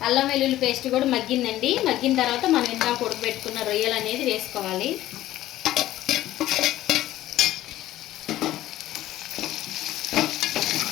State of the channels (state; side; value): quieter; right; 14.5 dB